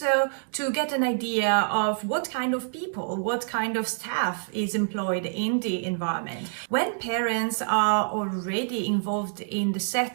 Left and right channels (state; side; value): silent; left; digital silence